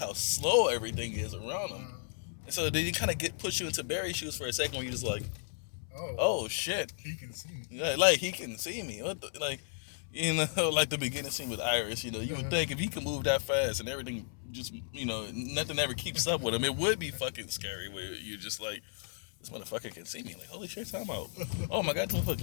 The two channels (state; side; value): silent; right; 55 dB below the other